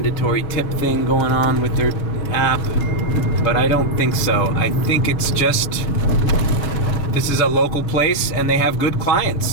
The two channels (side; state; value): right; late; 6.1 ms